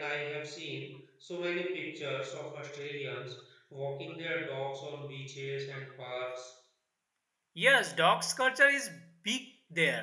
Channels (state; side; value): identical; both; correlation 1.00